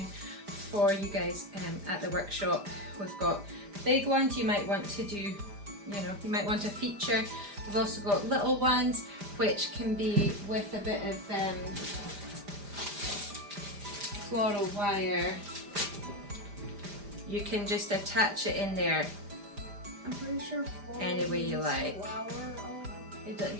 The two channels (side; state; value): left; late; 5.0 ms